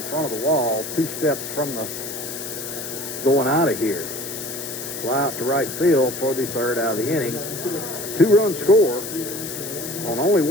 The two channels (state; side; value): noise; left; hiss, 8 dB below the sound